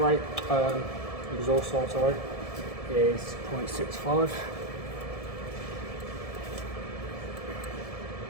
exhaust side, sorry, is 0.65.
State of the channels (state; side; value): late; right; 1.7 ms